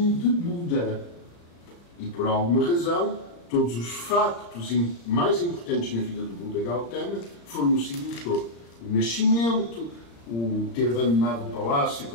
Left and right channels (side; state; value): right; late; 34 ms